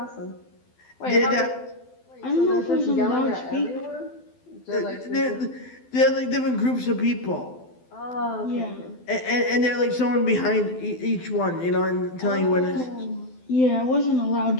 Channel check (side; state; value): right; late; 12 ms